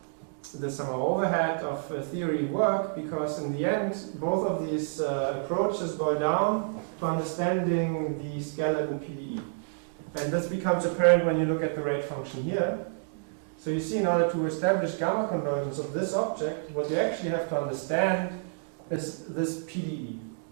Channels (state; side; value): silent; left; digital silence